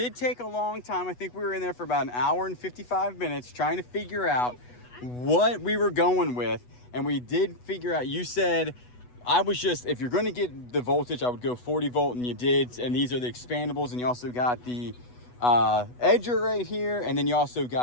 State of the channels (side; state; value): right; late; 8.1 ms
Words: take a long time. I think we were in there for about an hour and 55 minutes trying to figure out what we were going with. And we did figure out, you said, I was just, if you're going to get the voltage, I would go 40 volt, and you did. And these are the expandables, and you also got the edger right here, and then you also